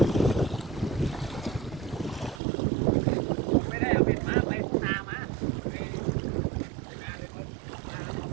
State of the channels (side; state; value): left; drops out; at 2.4 s